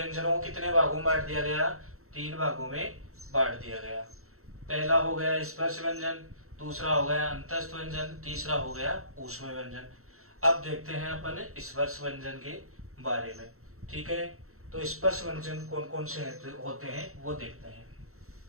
को कितने भागों में बांट दिया गया? 3 भागों में बांट दिया गया। पहला हो गया स्पर्श व्यंजन, दूसरा हो गया अंतस्थ व्यंजन, तीसरा हो गया ऊष्म व्यंजन। अब देखते हैं अपन स्पर्श व्यंजन के बारे में, ठीक है। तो स्पर्श व्यंजन कौन कौन से होते हैं वो देखते हैं।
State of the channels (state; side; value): late; left; 0.63 ms